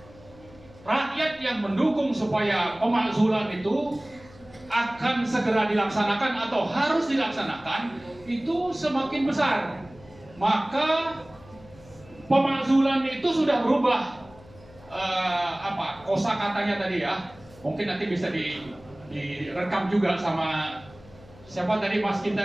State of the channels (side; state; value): left; noise; hum, 23 dB below the sound